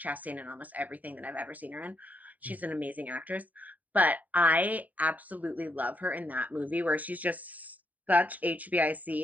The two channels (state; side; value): late; left; 0.077 ms